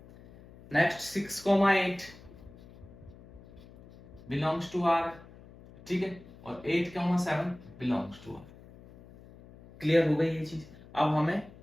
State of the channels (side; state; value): left; noise; hum, 21 dB below the sound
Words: Next 6,8 belongs to R. ठीक है, और 8,7 बिलोंग्स टू आर। क्लियर हो गई ये चीज। अब हमें